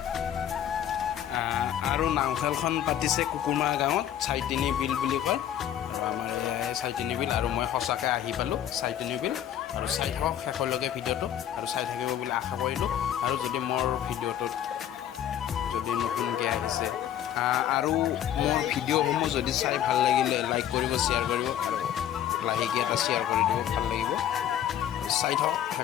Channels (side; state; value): right; quieter; 10.6 dB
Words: খেলখন পাতিছে কুকুৰমাৰা গাঁৱত চাইটিনি বিল বুলি কয়। আৰু আমাৰ এই চাইটিনি বিল, আৰু মই সঁচাকৈ আহি পালোঁ চাইটিনি বিল। আৰু চাই থাকক শেষলৈকে ভিডিঅ'টো, আৰু চাই থাকিব বুলি আশা কৰিলোঁ। আৰু যদি মোৰ ভিডিঅ'টোত যদি নতুনকৈ আহিছে আৰু মোৰ ভিডিঅ'সমূহ যদি চাই ভাল লাগিলে লাইক কৰিব, শ্বেয়াৰ কৰিব, আৰু লাহেকৈ এটা শ্বেয়াৰ কৰি দিব, ভাল লাগিব। চাই থাকক